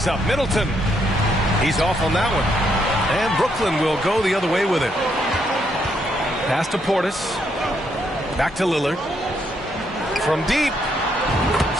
up. Middleton. He's off on that one. And Brooklyn will go the other way with it. Pass to Portis. Back to Lillard. From deep.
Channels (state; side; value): normal; both; correlation 0.75